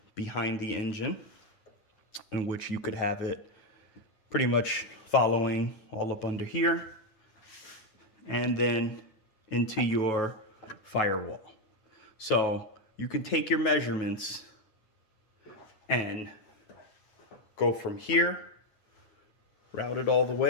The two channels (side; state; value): right; late; 9.3 ms